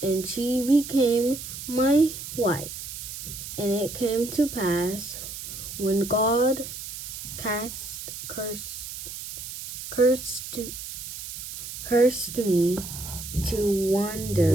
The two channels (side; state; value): right; noise; hiss, 9 dB below the sound